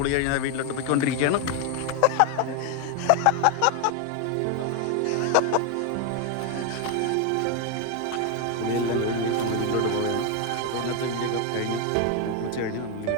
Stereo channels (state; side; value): different; both; correlation 0.01